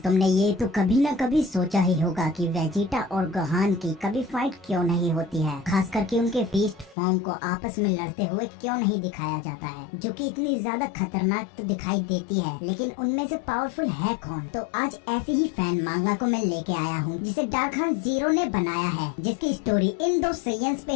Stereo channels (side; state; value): right; drops out; at 7.0 s